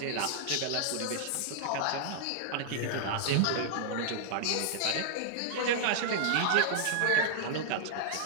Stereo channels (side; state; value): both; different; correlation -0.01